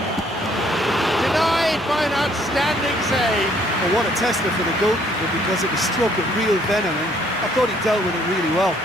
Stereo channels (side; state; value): both; normal; correlation 0.64